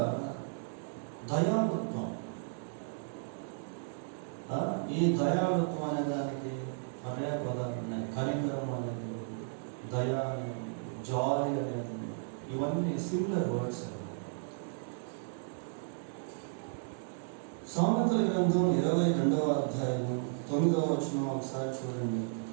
దయాళుత్వం. ఈ దయాళుత్వం అనే దానికి పర్యాయ పదాలు ఉన్నాయి. కనికరం అనేది, దయా అనేది, జాలి అనేది, ఇవన్నీ సిమిలర్ వర్డ్స్. సామెతల గ్రంథం 22వ అధ్యాయం 9వ వచనం ఒకసారి చూడండి.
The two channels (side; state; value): left; silent; 55 dB below the other